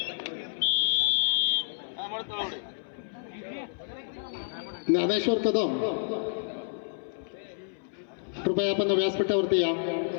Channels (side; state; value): right; silent; 58 dB below the other